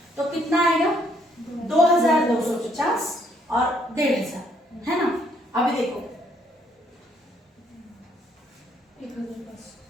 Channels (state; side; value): normal; both; correlation 0.68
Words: तो कितना आएगा, 2,250 और 1,500, है ना। अभी देखो